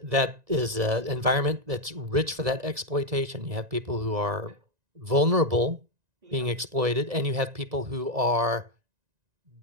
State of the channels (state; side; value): late; left; 1.9 ms